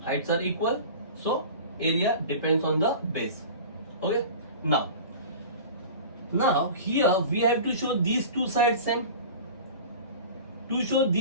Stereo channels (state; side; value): inverted; both; correlation -0.37